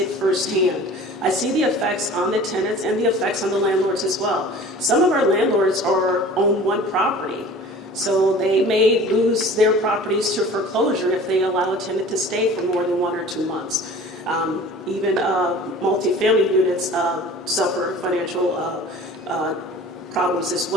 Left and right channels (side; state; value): both; normal; correlation 0.44